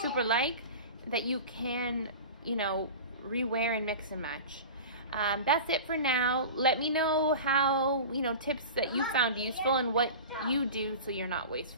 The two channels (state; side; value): inverted; both; correlation -0.33